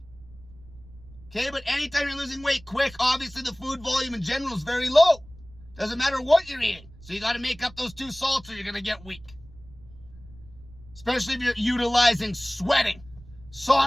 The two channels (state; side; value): noise; right; rumble, 21 dB below the sound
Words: Okay, but anytime you're losing weight quick, obviously the food volume in general is very low. Doesn't matter what you're eating. So you got to make up those 2 salts or you're going to get weak. Especially if you're utilizing sweating,